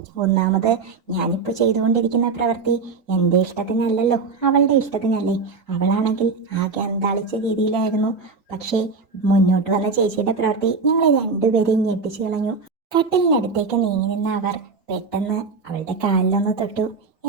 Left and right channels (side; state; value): left; quieter; 4.5 dB